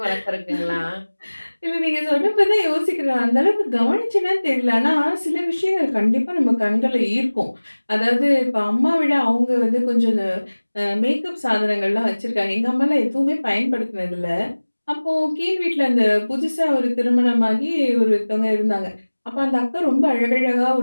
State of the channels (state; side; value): inverted; both; correlation -1.00